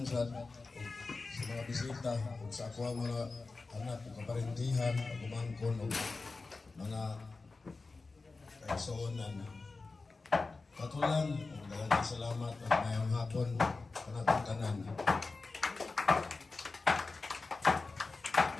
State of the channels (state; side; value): quieter; right; 3.8 dB